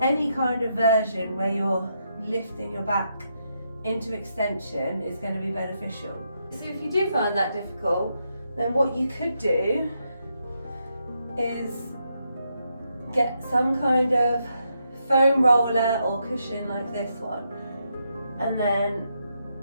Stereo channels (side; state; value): both; inverted; correlation -0.80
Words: Any kind of version where you're lifting your back into extension is going to be beneficial. So if you do find that difficult, then what you could do is get some kind of foam roller or cushion like this one, and then